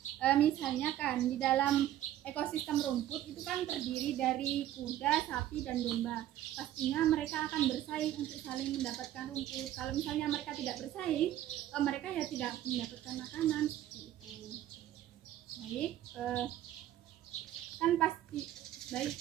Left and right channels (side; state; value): left; quieter; 12.8 dB